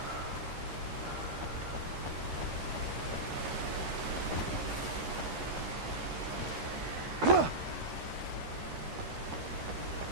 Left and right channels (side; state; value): left; late; 12 ms